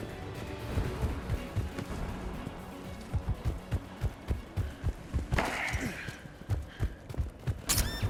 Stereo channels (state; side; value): identical; both; correlation 1.00